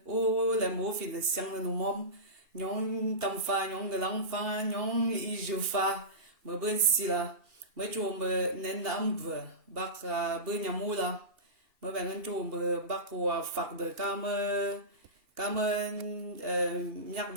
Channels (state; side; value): late; left; 2.7 ms